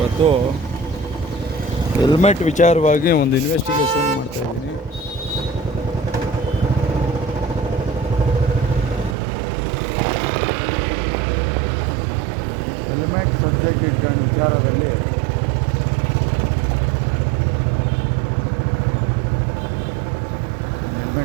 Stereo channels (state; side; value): drops out; left; at 9.2 s